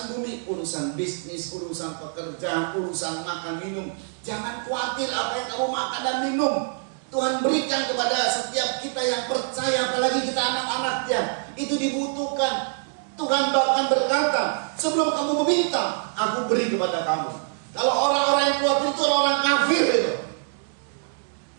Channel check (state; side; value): silent; left; 62 dB below the other